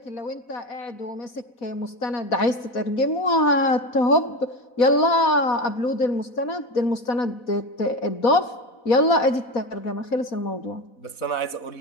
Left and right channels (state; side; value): late; right; 4.1 ms